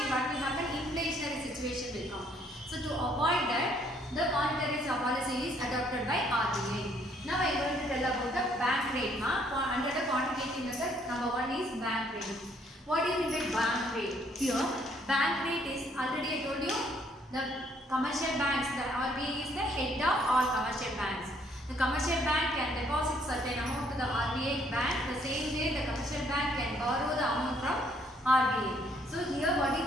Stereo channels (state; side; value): normal; both; correlation 0.66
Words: what will happen? Inflationary situation will come. So to avoid that, the monetary policy is adopted by RBI. Now I am going to tell about the bank rate. Under the quantitative method, number 1 is bank rate. What do you mean by bank rate? Here, bank rate is already I told you the commercial banks. The RBI is the head of all commercial banks. The commercial bank can deposit certain amount to the RBI bank. The same way the commercial bank can borrow the amount from RBI. So here, what